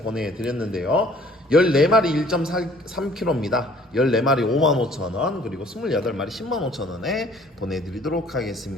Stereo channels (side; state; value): both; normal; correlation 0.56